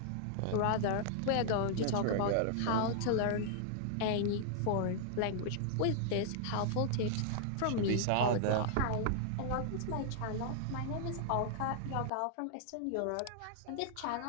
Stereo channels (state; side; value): different; both; correlation -0.01